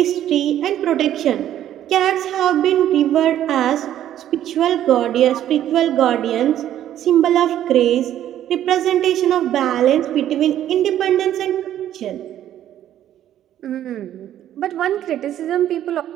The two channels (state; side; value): quieter; left; 11.6 dB